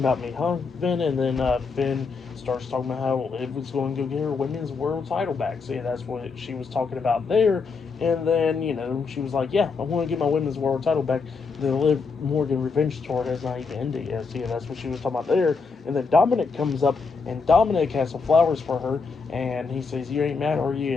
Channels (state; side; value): quieter; right; 4.8 dB